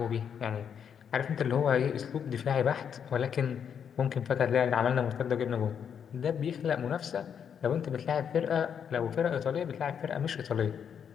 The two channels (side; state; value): right; quieter; 7.8 dB